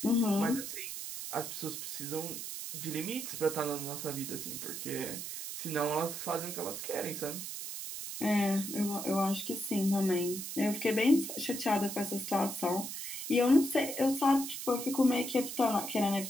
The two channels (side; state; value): right; noise; hiss, 6 dB below the sound